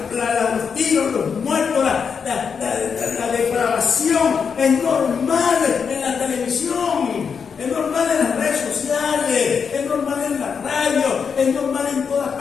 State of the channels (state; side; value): quieter; right; 6.3 dB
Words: los tiros, los muertos, la depravación es normal en la televisión, es normal en las redes sociales, es normal en la radio, es normal en todas